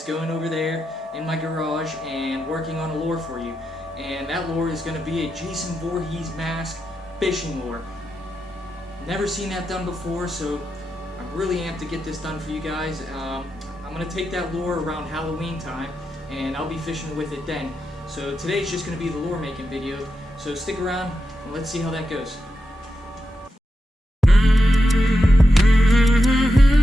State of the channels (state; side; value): normal; both; correlation 0.87